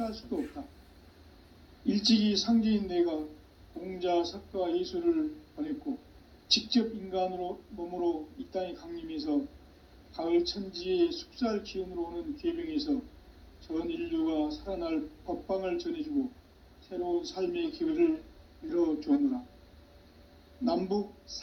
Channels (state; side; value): identical; both; correlation 1.00